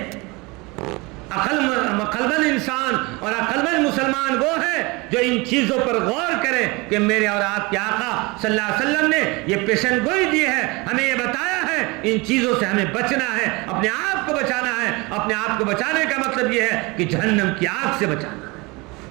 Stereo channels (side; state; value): left; quieter; 25.3 dB